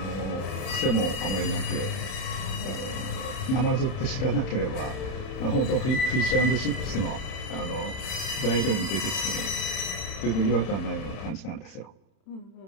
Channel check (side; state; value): right; late; 31 ms